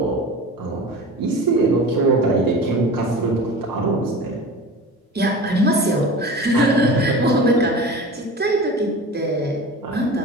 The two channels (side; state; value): both; normal; correlation 0.35